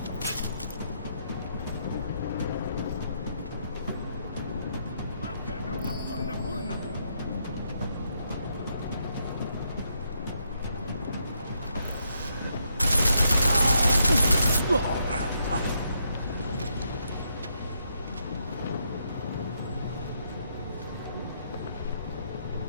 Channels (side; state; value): both; inverted; correlation -0.77